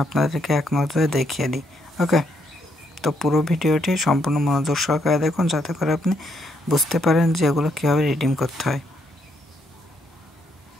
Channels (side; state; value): both; normal; correlation 0.75